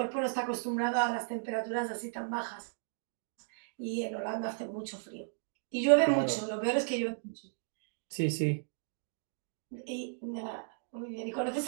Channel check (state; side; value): silent; left; digital silence